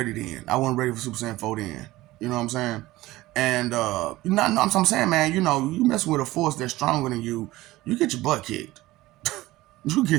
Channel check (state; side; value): quieter; left; 17.9 dB